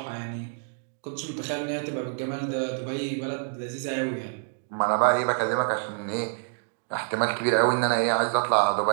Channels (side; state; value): left; silent; digital silence